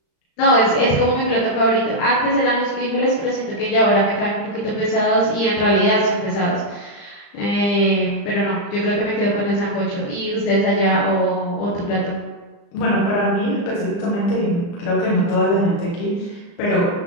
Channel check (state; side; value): late; right; 35 ms